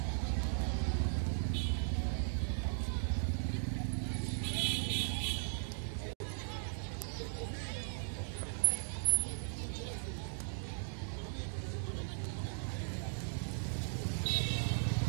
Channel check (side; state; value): left; silent; digital silence